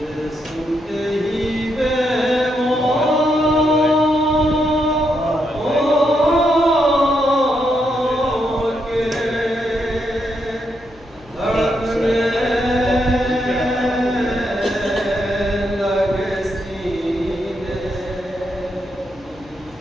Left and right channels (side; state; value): left; noise; hum, 25 dB below the sound